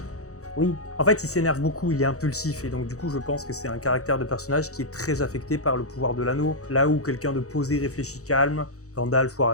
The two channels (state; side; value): late; right; 0.65 ms